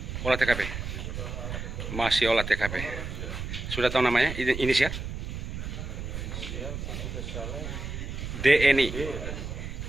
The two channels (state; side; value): noise; right; rumble, 6 dB below the sound